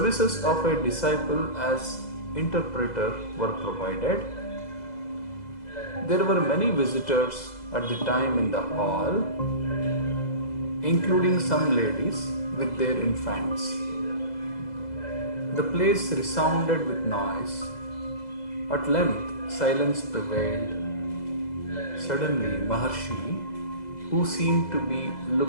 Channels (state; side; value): late; right; 2.0 ms